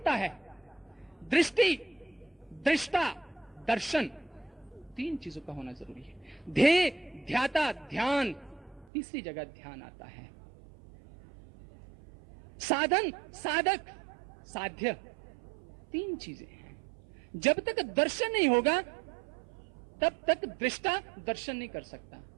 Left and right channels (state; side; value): drops out; left; at 8.9 s